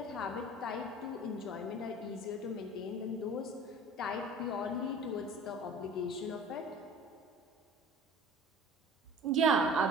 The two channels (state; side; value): normal; both; correlation 0.43